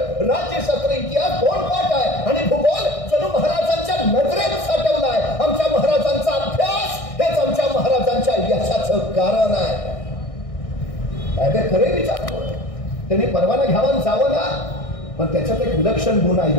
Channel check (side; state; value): right; late; 1.6 ms